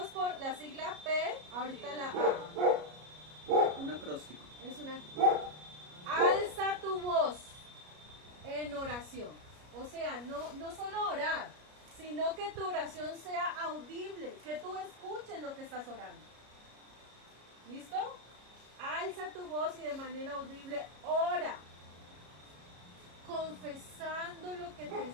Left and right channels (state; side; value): late; left; 33 ms